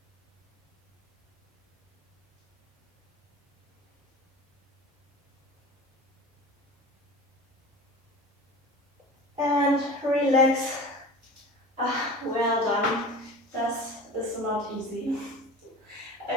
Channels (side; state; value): both; normal; correlation 0.36